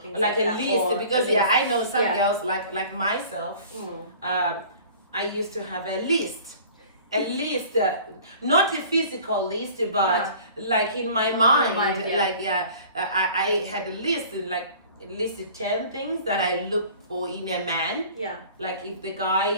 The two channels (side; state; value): both; inverted; correlation -0.46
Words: things like a that. list, because I know some girls like myself. I used to have a list, not a physical list, but like in my mind, I had a list, like listed 10 things that I look for in a man. Yeah. Like if the guy